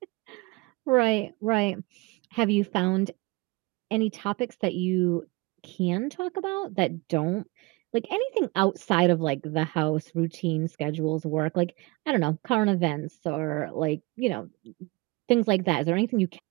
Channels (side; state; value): left; quieter; 24.3 dB